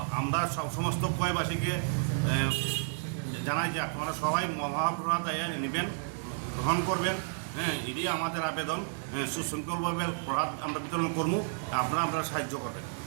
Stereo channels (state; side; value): silent; left; digital silence